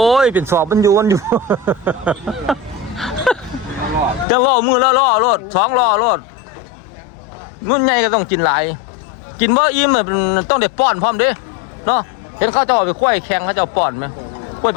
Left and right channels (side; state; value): right; drops out; at 4.2 s